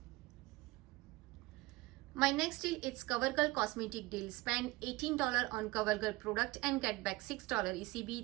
My next deal is CoverGirl cosmetic deal. Spend $18 on CoverGirl product and get back $6 ECB.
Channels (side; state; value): left; quieter; 20.8 dB